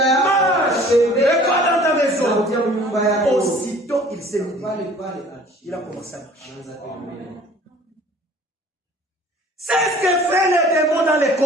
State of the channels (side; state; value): both; normal; correlation 0.50